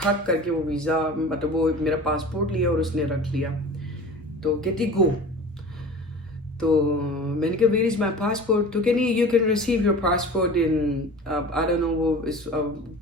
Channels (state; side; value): normal; both; correlation 0.38